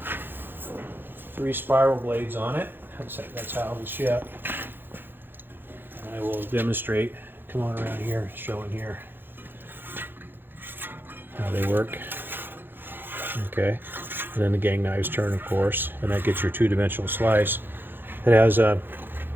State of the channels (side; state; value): left; late; 0.099 ms